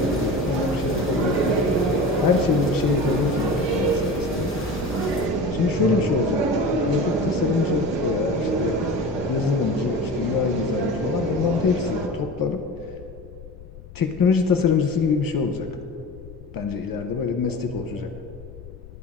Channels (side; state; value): left; noise; rumble, 17 dB below the sound